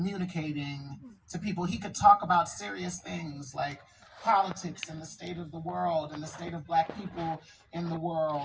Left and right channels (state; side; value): identical; both; correlation 1.00